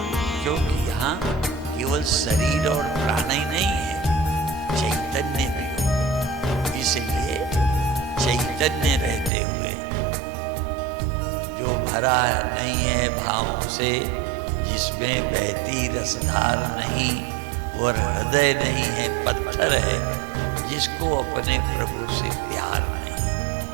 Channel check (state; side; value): drops out; left; at 9.3 s